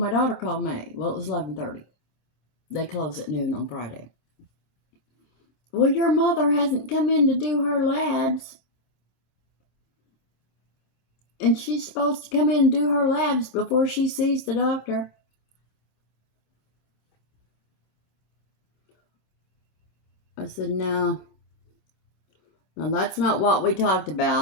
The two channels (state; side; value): late; right; 27 ms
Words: daughter called me. Well, it was 11:30. They close at noon on Friday. Well, your mother hasn't come in to do her labs. And she's supposed to come in and do her labs before she sees the doctor. I said, no. Now, that's not what we talked